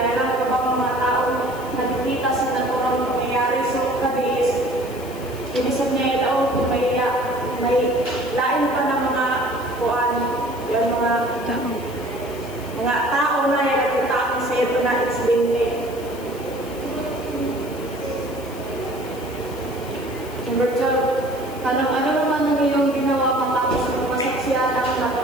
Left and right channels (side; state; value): left; noise; hiss, 19 dB below the sound